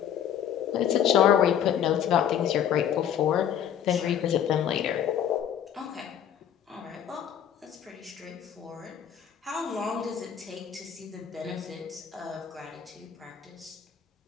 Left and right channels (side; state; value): right; quieter; 9.4 dB